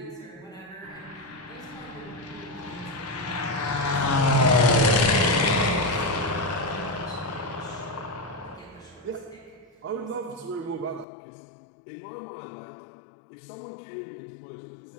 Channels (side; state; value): right; drops out; at 11.1 s